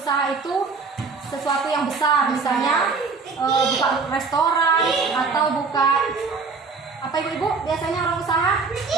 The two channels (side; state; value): left; quieter; 4.6 dB